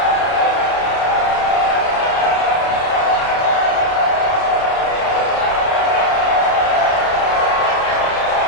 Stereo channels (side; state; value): right; late; 31 ms